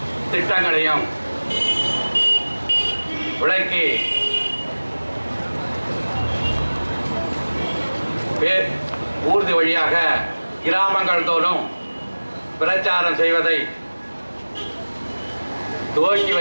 திட்டங்களையும் விளக்கி ஊர்தி வழியாக கிராமங்கள் தோறும் பிரச்சாரம் செய்வதை துவக்கி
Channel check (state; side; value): inverted; both; correlation -1.00